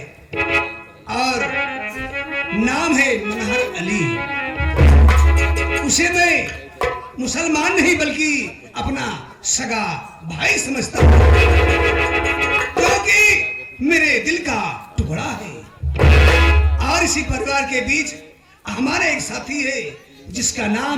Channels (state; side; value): identical; both; correlation 1.00